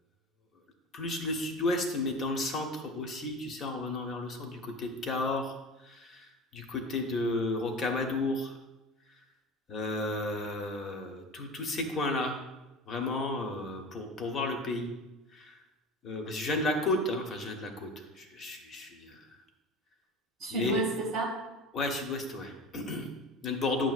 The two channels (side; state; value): both; normal; correlation 0.33